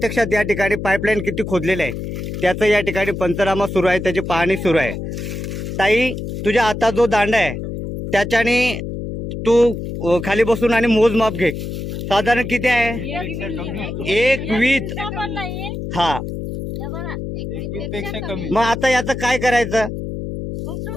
या ठिकाणी पाईपलाईन किती खोदलेलं आहे त्याचं या ठिकाणी पंचनामा सुरू आहे, त्याची पाहणी सुरू आहे। ताई, तुझ्या हातात जो दांडा आहे त्याच्याने तू खाली बसून आणि मोजमाप घे, साधारण किती आहे? 1 हा, 1 कमी। मग आता याचं काय करायचं?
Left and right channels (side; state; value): left; noise; hum, 6 dB below the sound